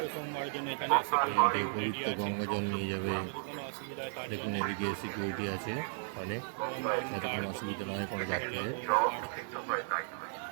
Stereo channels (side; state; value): left; silent; digital silence